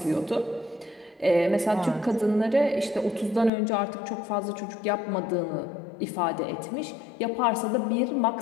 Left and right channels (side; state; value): right; drops out; at 3.5 s